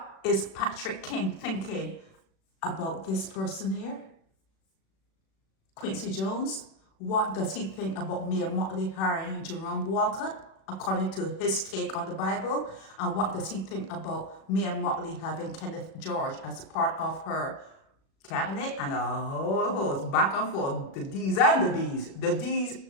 is Patrick King thinking about this person here? Quincy Jones, what does he think about Mia Motley hiring Jerome Walcott, according to his take on the Bible? And what does he think about Mia Motley having Kenneth George as part of her cabinet? And a whole host, back and forth, the D's and the B's, the D's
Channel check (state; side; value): late; right; 36 ms